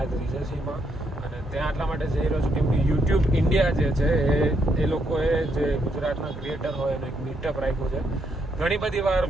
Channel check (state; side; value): normal; both; correlation 0.76